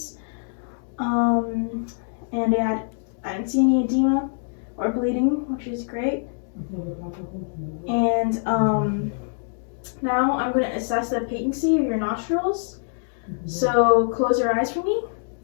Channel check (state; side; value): silent; right; digital silence